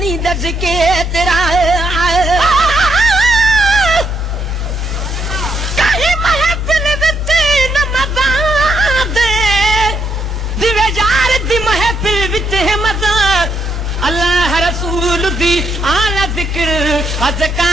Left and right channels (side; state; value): left; noise; hum, 14 dB below the sound